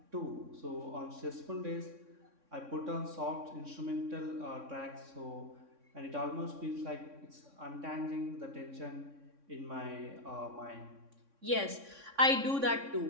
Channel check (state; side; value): late; left; 3.6 ms